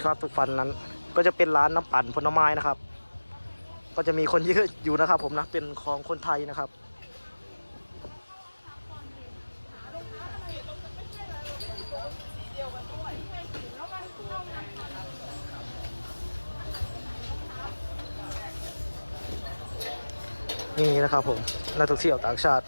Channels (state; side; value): inverted; both; correlation -1.00